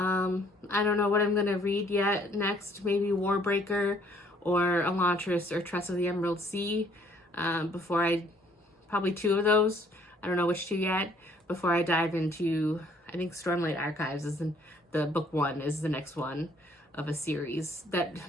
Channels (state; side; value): normal; both; correlation 0.62